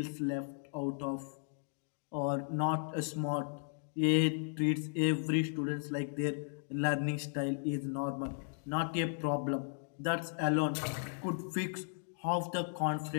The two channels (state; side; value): silent; right; digital silence